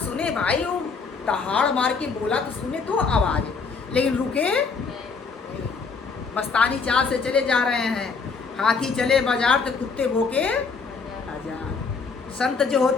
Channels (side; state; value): right; quieter; 4.9 dB